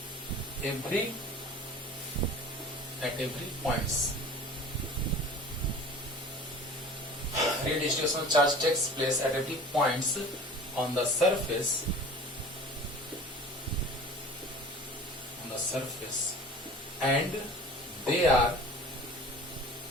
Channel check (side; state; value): both; normal; correlation 0.42